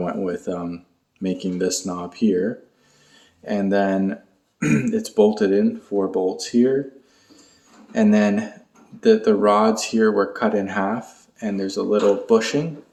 with making this knob here. And then it's bolted in, 4 bolts here. And then the rods here were cut in half, and there's a little bushing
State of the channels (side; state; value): both; identical; correlation 1.00